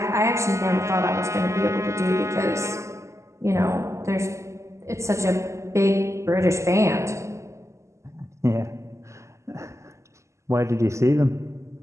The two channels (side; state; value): left; late; 0.14 ms